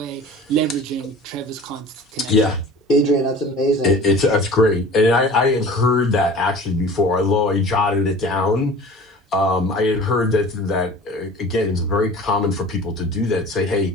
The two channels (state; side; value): normal; both; correlation 0.42